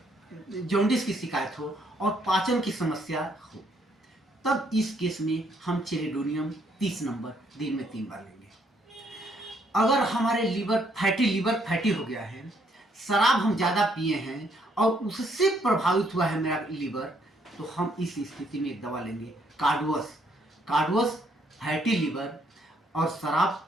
जॉन्डिस की शिकायत हो और पाचन की समस्या हो, तब इस केस में हम चेलिडोनियम 30 नंबर दिन में 3 बार लेंगे। अगर हमारे लीवर फैटी हो गया है, शराब हम ज़्यादा पिए हैं और उससे प्रभावित हुआ है मेरा लीवर, तो हम इस स्थिति में एक दवा लेंगे कार्डवस फैटी लीवर और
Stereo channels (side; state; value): both; normal; correlation 0.70